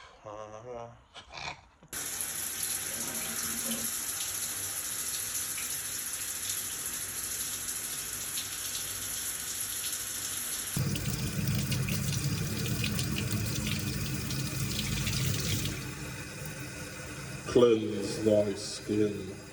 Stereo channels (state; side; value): identical; both; correlation 1.00